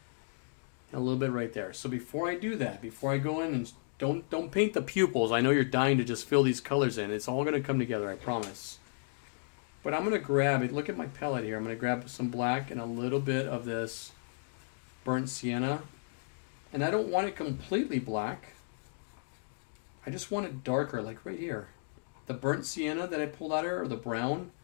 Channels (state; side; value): silent; right; digital silence